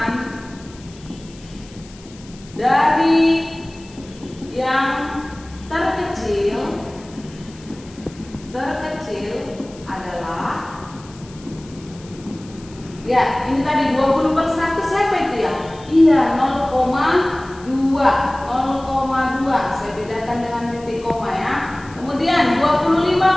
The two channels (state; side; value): noise; left; hiss, 23 dB below the sound